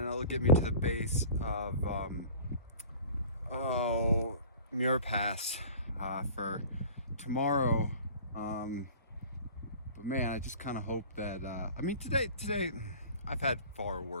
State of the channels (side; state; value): both; inverted; correlation -0.43